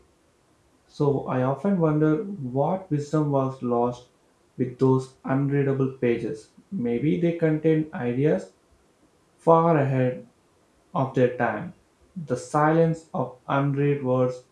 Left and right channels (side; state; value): both; identical; correlation 1.00